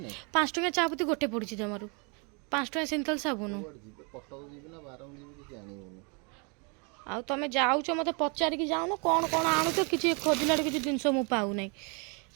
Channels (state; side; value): quieter; left; 34.1 dB